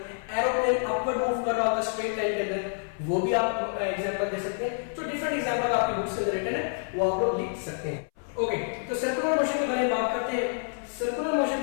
एरोप्लेन अपवर्ड मूव कर रहा होता है स्ट्रेट लाइन के अंदर, वो भी आप एग्जांपल दे सकते हैं। तो डिफरेंट एग्जांपल आपकी बुक्स के अंदर रिटन है, वो आप लोग लिख सकते हैं। ओके, तो सर्कुलर मोशन के बारे में बात करते हैं। सर्कुलर मोशन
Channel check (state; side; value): silent; right; 59 dB below the other